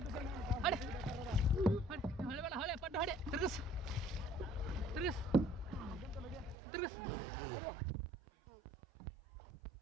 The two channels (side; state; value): left; drops out; at 6.6 s